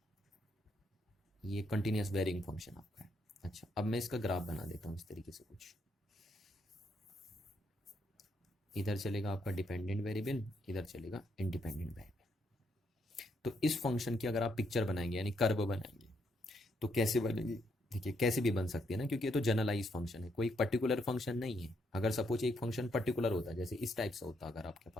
ये कंटिन्यूअस वेरिंग फंक्शन आपका है। अच्छा, अब मैं इसका ग्राफ बना देता हूँ इस तरीके से कुछ। इधर चलेगा आपका डिपेंडेंट वेरिएबल, इधर चलेगा इंडिपेंडेंट वेरिएबल। तो इस फंक्शन की अगर आप पिक्चर बनाएंगे यानी कर्व बनाएंगे तो कैसे बनेगी? देखिए कैसे भी बन सकती है ना, क्योंकि ये तो जनरलाइज फंक्शन है, कोई पर्टिकुलर फंक्शन नहीं है। अगर सपोज एक फंक्शन पर्टिकुलर होता है, जैसे इस टाइप से होता, अगर आपके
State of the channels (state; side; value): normal; both; correlation 0.75